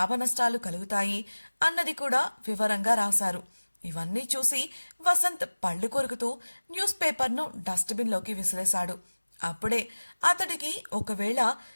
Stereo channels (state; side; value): inverted; both; correlation -1.00